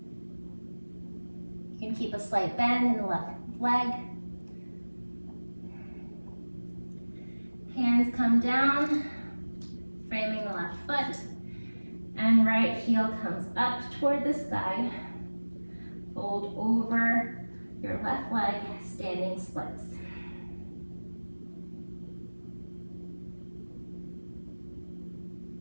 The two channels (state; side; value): inverted; both; correlation -1.00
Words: You can keep a slight bend in the left leg. Hands come down, framing the left foot, and right heel comes up toward the sky. Fold over your left leg, standing splits.